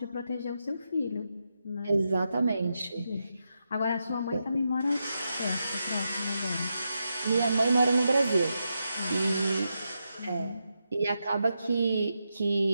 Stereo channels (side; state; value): both; inverted; correlation -0.86